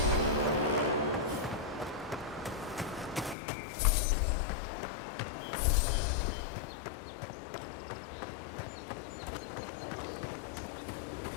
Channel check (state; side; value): drops out; right; at 3.4 s